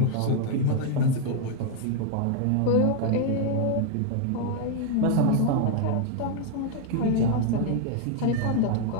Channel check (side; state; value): both; different; correlation 0.00